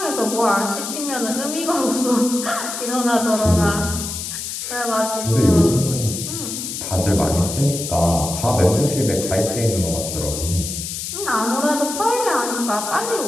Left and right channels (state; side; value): noise; left; hiss, 6 dB below the sound